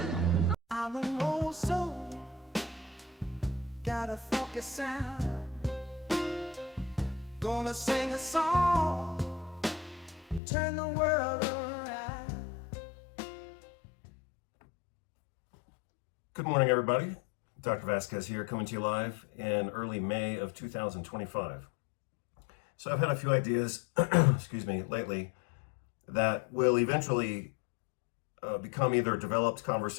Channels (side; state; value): right; drops out; at 10.4 s